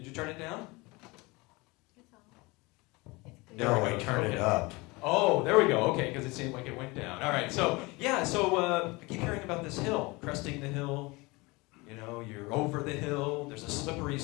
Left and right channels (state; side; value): quieter; right; 24.4 dB